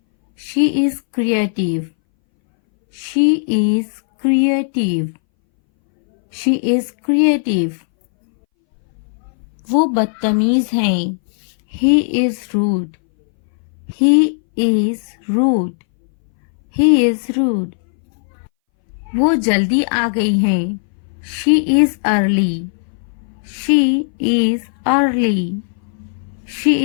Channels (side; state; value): right; silent; 64 dB below the other